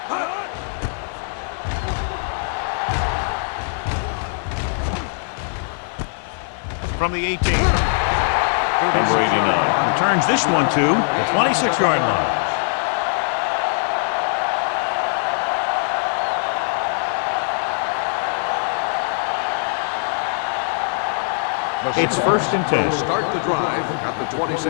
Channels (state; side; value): silent; right; 57 dB below the other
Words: From the 18. Number 89 returns this one to the 26-yard line. It's 1st and 10. Start the drive at the